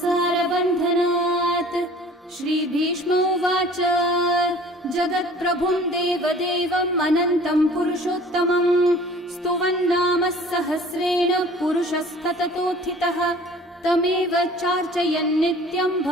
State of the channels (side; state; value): both; normal; correlation 0.48